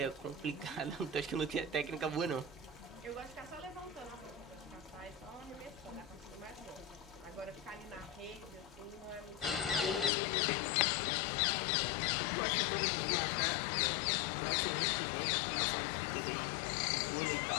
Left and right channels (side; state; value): right; drops out; at 10.1 s